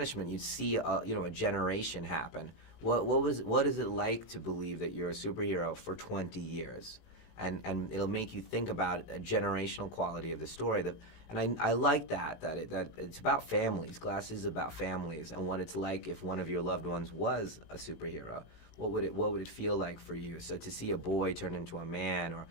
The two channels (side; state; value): right; late; 18 ms